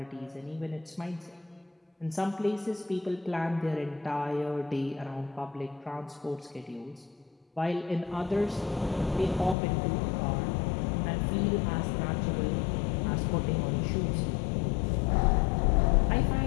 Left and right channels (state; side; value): drops out; right; at 9.6 s